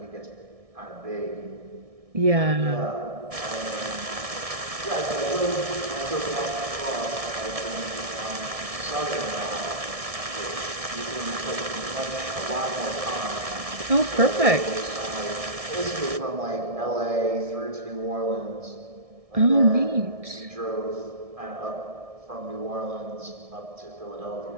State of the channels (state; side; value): late; left; 1.6 ms